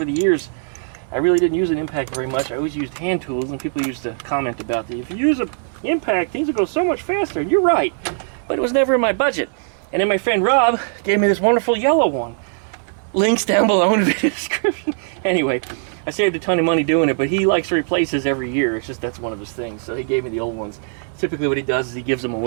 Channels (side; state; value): left; silent; 66 dB below the other